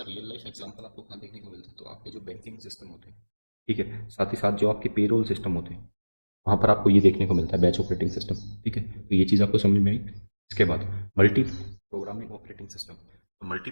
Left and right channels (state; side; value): inverted; both; correlation -1.00